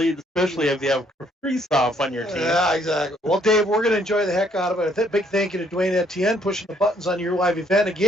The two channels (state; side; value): normal; both; correlation 0.67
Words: especially if you have Kristoff on your team. Yeah, exactly. Well, Dave, we're going to enjoy the heck out of it. A big thank you to Dwayne Etienne pushing the buttons on Your Live Event.